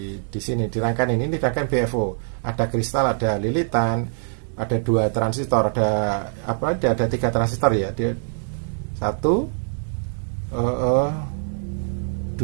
sini di rangkaian ini rangkaian BFO. Ada kristal, ada lilitan. Ada 2 transistor, ada 3 transistor ya. 1 2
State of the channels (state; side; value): silent; left; 62 dB below the other